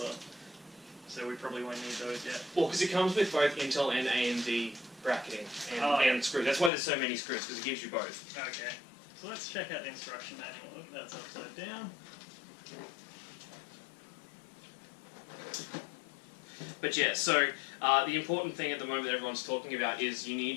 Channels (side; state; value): right; drops out; at 6.7 s